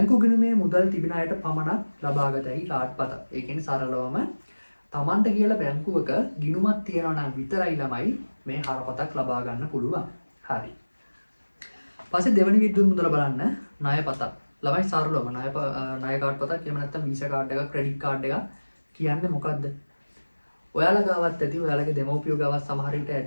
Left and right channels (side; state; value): both; inverted; correlation -1.00